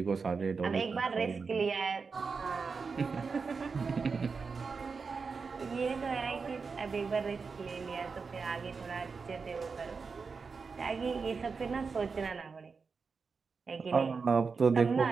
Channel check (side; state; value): left; quieter; 5.0 dB